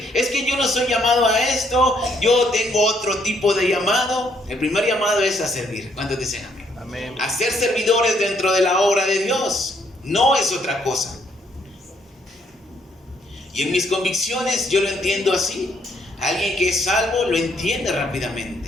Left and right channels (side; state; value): both; normal; correlation 0.70